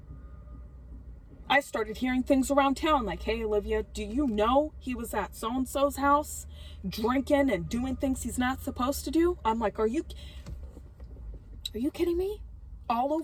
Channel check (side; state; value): both; identical; correlation 1.00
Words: I started hearing things around town like, hey, Olivia, do you know he was at so-and-so's house drinking and doing things he's not supposed to do? I'm like, are you kidding me? All